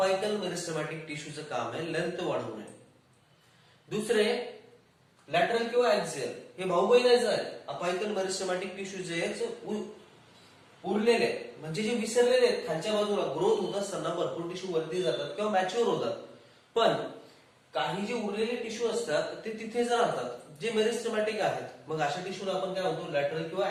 मेरिस्टेमॅटिक टिश्यूचं काम आहे लेंथ वाढवणे. दुसरे लॅटरल किंवा ऍक्झियल हे भाऊ बहिणीचं आहे. अपायकल मेरिस्टेमॅटिक टिश्यू जे उरलेले म्हणजे जे विसरलेले आहेत खालच्या बाजूला ग्रोथ होत असताना भरपूर टिश्यू वरती जातात किंवा मॅच्युअर होतात, पण काही जे उरलेले टिश्यू असतात ते तिथेच राहतात जे मेरिस्टेमॅटिक आहेत. मग अशा टिश्यूला आपण काय म्हणतो लॅटरल किंवा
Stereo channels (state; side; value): identical; both; correlation 1.00